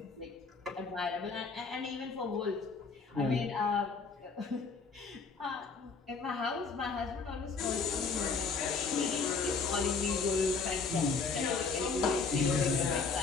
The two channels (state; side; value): quieter; right; 4.7 dB